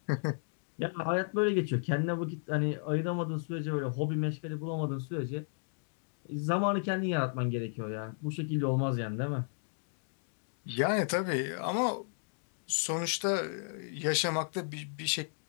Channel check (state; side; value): silent; right; digital silence